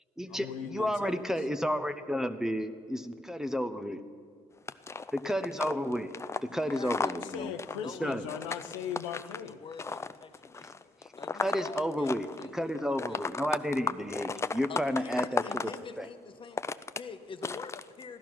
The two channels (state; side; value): normal; both; correlation 0.80